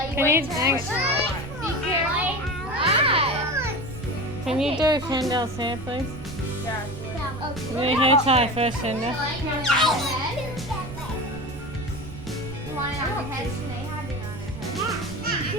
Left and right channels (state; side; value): noise; right; rumble, 13 dB below the sound